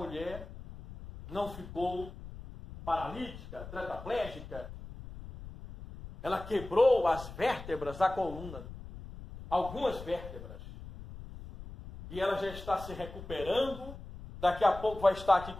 não ficou paralítica, tetraplégica. Ela quebrou as vértebras da coluna, algumas vértebras. E ela já está se recuperando, daqui a pouco vai estar aqui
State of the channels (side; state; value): left; noise; rumble, 13 dB below the sound